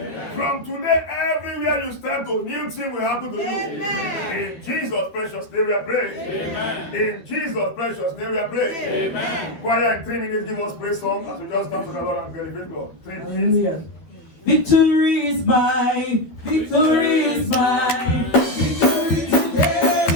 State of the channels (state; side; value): late; right; 12 ms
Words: From today, everywhere you step to, new thing will happen to you. In Jesus' precious name we are praying. In Jesus' precious name we are praying. Choir, in 3 minutes, give us praise song as we just dance to the Lord and glorify God. 3 minutes. Victory is mine. Victory is mine. Victory today